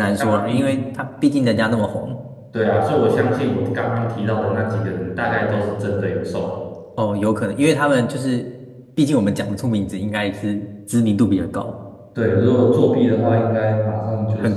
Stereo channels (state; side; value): identical; both; correlation 1.00